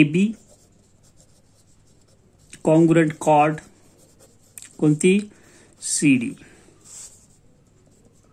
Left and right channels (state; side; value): identical; both; correlation 1.00